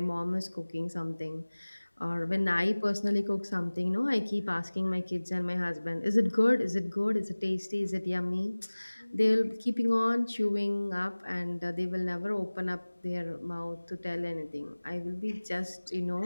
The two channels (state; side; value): inverted; both; correlation -1.00